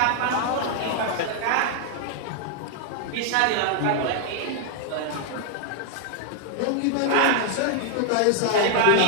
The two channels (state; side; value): different; both; correlation 0.00